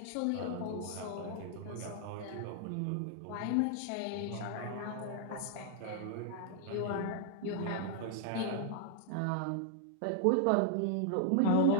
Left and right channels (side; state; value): both; different; correlation -0.01